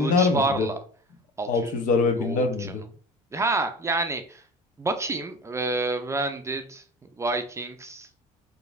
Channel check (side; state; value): both; normal; correlation 0.34